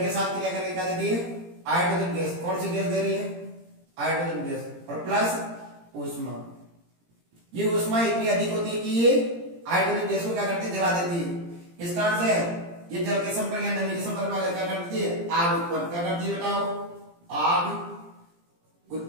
के साथ क्रिया करके क्या देती है, हाइड्रोजन गैस। कौन सी गैस दे रही है, हाइड्रोजन गैस, और प्लस ऊष्मा। ये ऊष्मा इतनी अधिक होती है कि ये हाइड्रोजन गैस को क्या करती है, जला देती है। इस कारण से ये जल के संपर्क या नमी के संपर्क में क्या करती है, आग उत्पन्न, क्या करती है बताओ, आग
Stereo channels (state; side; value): late; left; 17 ms